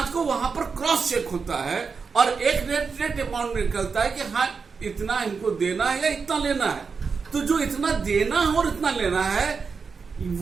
को वहां पर क्रॉस चेक होता है और एक नेट अमाउंट निकलता है कि हाँ इतना इनको देना है या इतना लेना है. तो जो इतना देना है और इतना लेना है,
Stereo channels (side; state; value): left; quieter; 5.3 dB